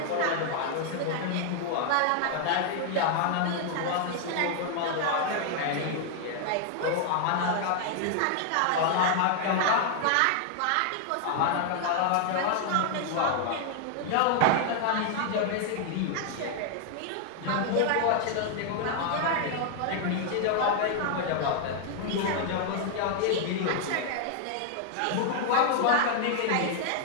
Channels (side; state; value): both; different; correlation 0.00